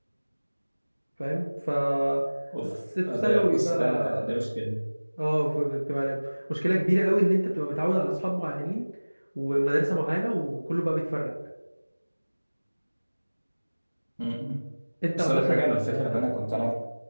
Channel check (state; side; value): inverted; both; correlation -1.00